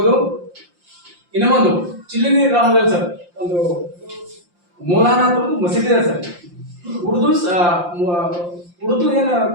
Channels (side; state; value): left; late; 5.7 ms